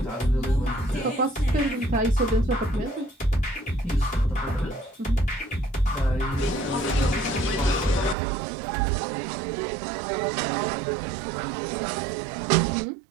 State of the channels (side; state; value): left; drops out; at 8.2 s